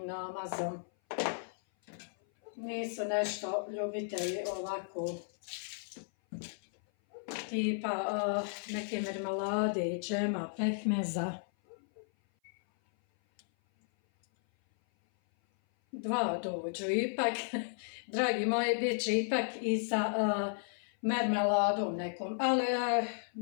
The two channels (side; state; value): right; silent; 55 dB below the other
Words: namazom. Nisu nešto ljubitelji ovako tipa neke mermelade, džema, pekmeza. 2 dođu ipak, dragi moji, bit će ipak i sa mermeladom nekom, ali